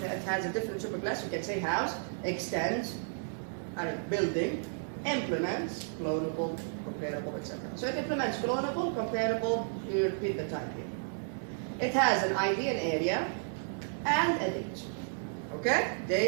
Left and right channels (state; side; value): silent; left; digital silence